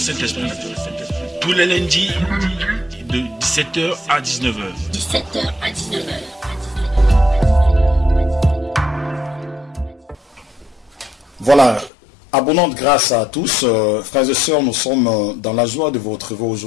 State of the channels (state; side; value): drops out; right; at 11.9 s